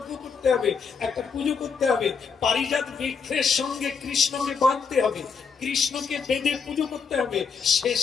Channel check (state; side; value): quieter; right; 5.8 dB